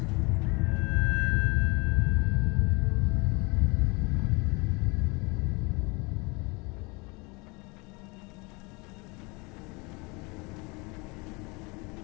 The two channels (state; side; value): quieter; right; 27.8 dB